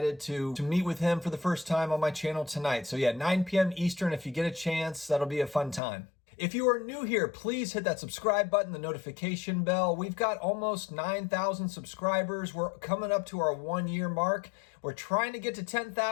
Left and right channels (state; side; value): drops out; right; at 5.8 s